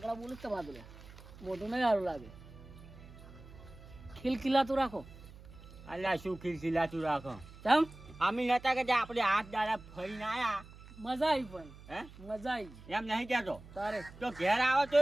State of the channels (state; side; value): noise; right; hum, 18 dB below the sound